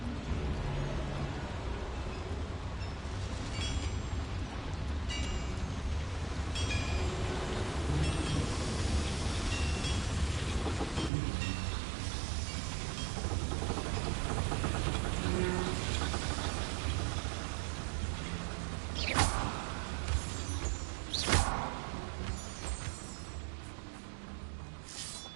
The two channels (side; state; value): left; drops out; at 11.1 s